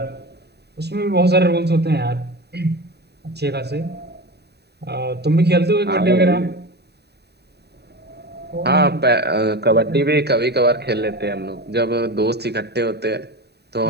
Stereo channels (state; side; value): late; left; 0.48 ms